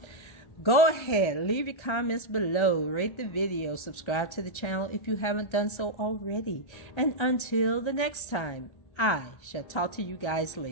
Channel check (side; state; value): right; late; 1.3 ms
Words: go ahead, leave your comments below, rate the video, subscribe to the channel if you haven't done so already. And until the next time, I shall talk to you guys